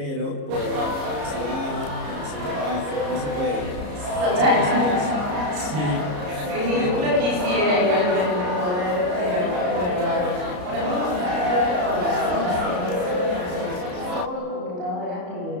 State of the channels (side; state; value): left; late; 33 ms